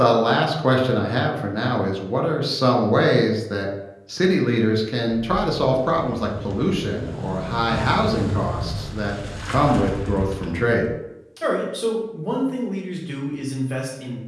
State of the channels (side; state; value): both; identical; correlation 1.00